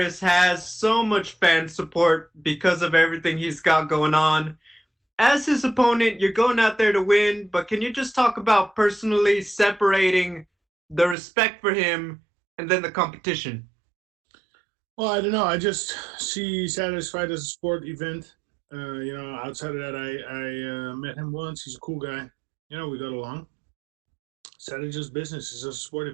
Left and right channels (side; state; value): left; drops out; at 11.2 s